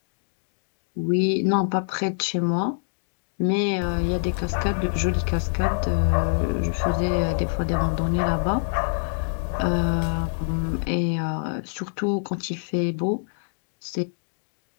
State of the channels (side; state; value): right; silent; digital silence